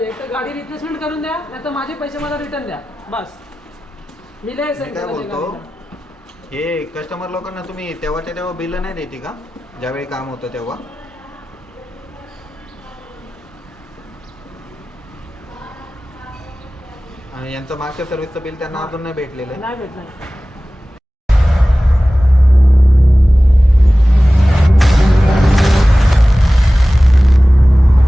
एक तर गाडी रिप्लेसमेंट करून द्या, नाही तर माझे पैसे मला रिटर्न द्या. बस मी लय मी काय बोलतो, हे कस्टमर लोकांना तुम्ही तेव्हाच्या तेव्हा बिल नाही देते का, ज्यावेळी काम होतं तेव्हा? आणि यांचं मागच्या सर्व्हिसचं बिल त्यांना अजून नाही भेटलेलं आहे. नाही भेटणार.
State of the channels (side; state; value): both; normal; correlation 0.96